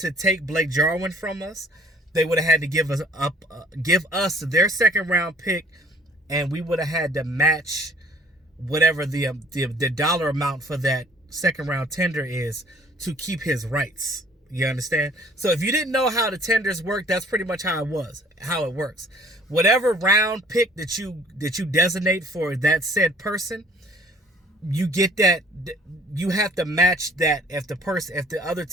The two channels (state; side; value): normal; both; correlation 0.56